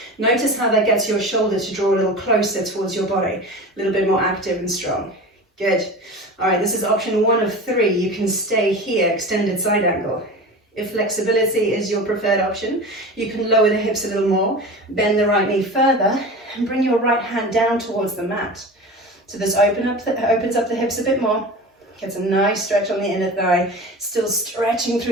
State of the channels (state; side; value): normal; both; correlation 0.32